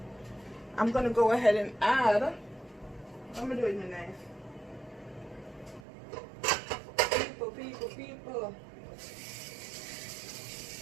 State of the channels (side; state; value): left; drops out; at 5.9 s